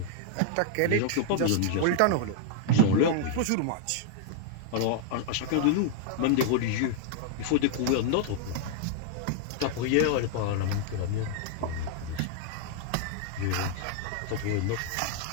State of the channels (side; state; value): both; different; correlation -0.01